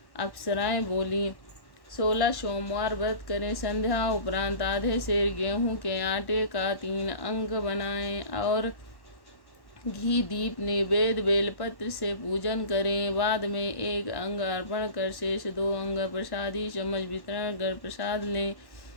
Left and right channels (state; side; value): late; right; 1.1 ms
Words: अप्सराएं बोली, 16 सोमवार व्रत करें। संध्या उपरांत आधे सेर गेहूं के आटे का 3 अंग बनाएं और घी दीप नैवेद्य बेलपत्र से पूजन करें। बाद में 1 अंग अर्पण कर शेष 2 अंग प्रसादी चम्मच वितरण कर प्रसाद लें।